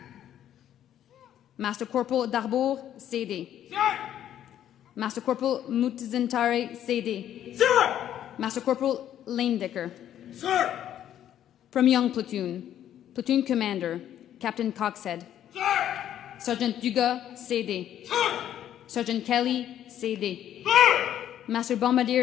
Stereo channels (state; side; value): quieter; right; 10.9 dB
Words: Master Corporal Darbour, CD. Sir! Master Corporal Mutizentare, CD. Sir! Master Corporal Lanedecker. Sir! From Young Platoon, Platoon Commander Captain Coxhead. Sir! Sergeant Dugas, CD. Sir! Sergeant Kelly, CD. Sir! Master